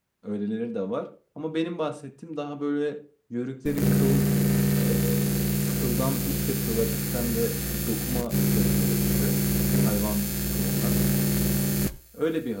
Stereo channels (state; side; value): identical; both; correlation 1.00